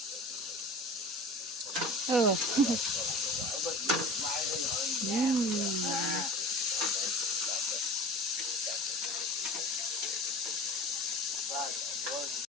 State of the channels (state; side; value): normal; both; correlation 0.37